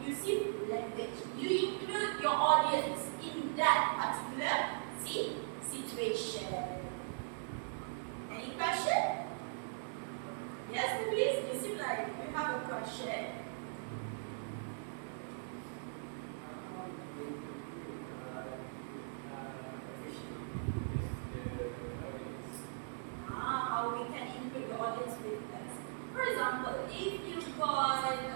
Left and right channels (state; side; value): silent; left; digital silence